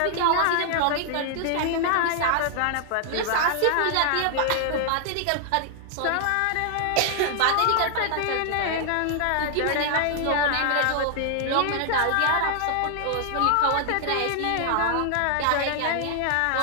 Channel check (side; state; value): both; different; correlation -0.01